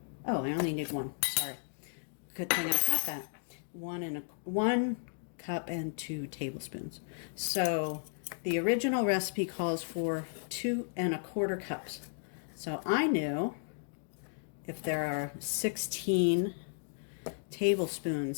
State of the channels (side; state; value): right; silent; digital silence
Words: Oh, I only need 1. Sorry. Good thing I caught that. 1 cup and 2 tablespoons. So the original recipe calls for 2 1/4 cups. So I knew if there are 16